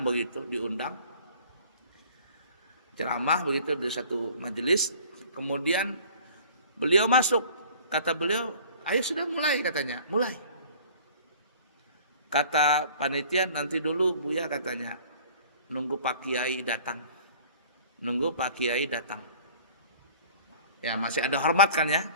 ceramah begitu di satu majelis. Kemudian beliau masuk, kata beliau, ayo sudah mulai katanya, mulai. Kata panitia nanti dulu Buya katanya, nunggu Pak Kiai datang. Ya masih ada hormat kan ya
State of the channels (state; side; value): inverted; both; correlation -0.49